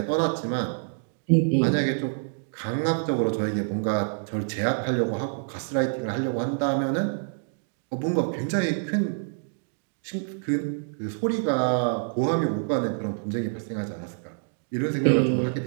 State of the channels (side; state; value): left; silent; digital silence